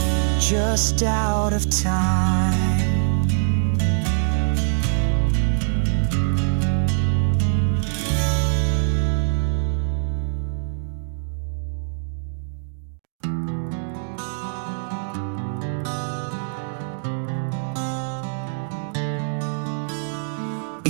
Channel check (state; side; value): silent; left; digital silence